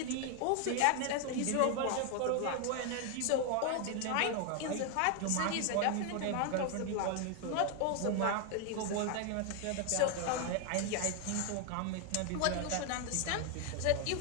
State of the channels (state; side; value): different; both; correlation 0.00